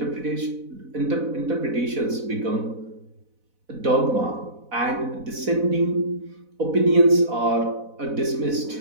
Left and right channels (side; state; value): left; late; 4.1 ms